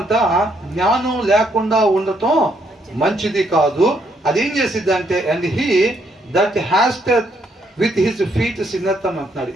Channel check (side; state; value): both; normal; correlation 0.72